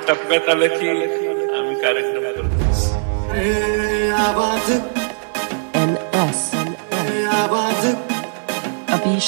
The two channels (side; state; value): left; silent; 56 dB below the other